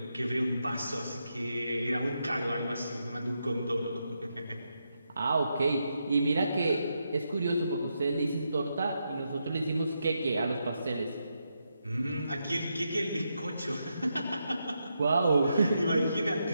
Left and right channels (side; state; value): both; inverted; correlation -0.83